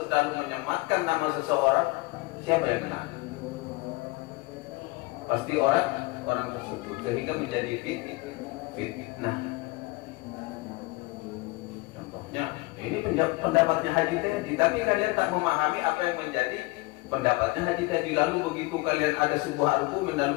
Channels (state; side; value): quieter; right; 23.1 dB